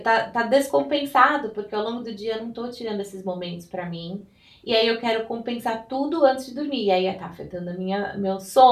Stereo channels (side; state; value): both; identical; correlation 1.00